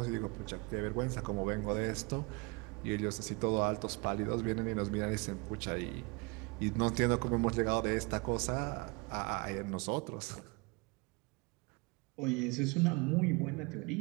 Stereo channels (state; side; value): quieter; left; 28.4 dB